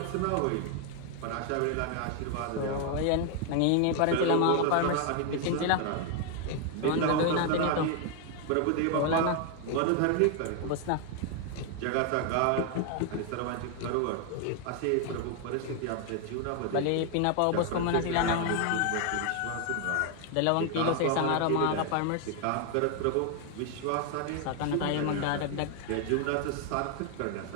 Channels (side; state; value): both; different; correlation 0.00